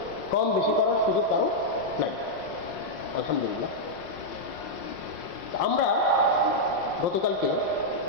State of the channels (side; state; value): right; late; 5.6 ms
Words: কম বেশি করার সুযোগ কারো নাই, আলহামদুলিল্লাহ। আমরা গতকালকে